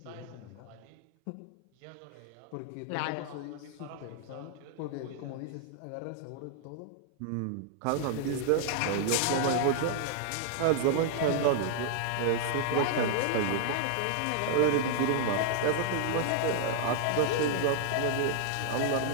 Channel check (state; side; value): different; both; correlation -0.01